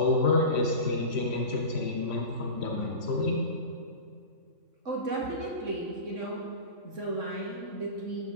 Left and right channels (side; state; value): left; late; 3.6 ms